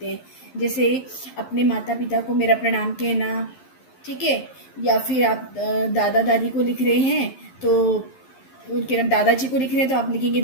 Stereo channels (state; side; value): late; right; 11 ms